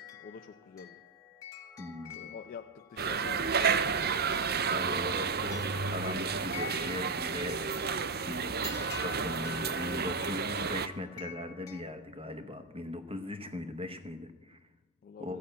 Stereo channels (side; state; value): left; quieter; 3.7 dB